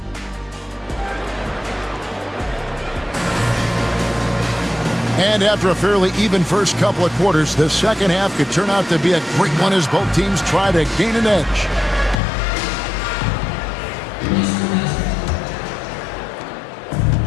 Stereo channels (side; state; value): right; drops out; at 12.2 s